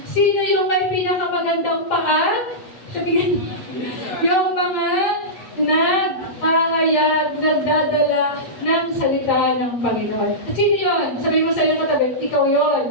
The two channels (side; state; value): right; late; 8.6 ms